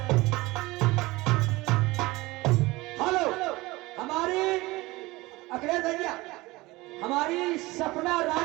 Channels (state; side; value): quieter; left; 21.0 dB